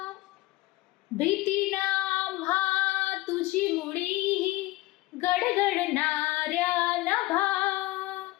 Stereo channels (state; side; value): quieter; right; 19.0 dB